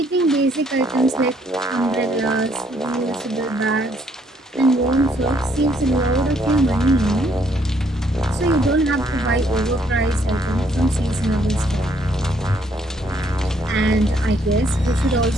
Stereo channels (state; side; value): normal; both; correlation 0.68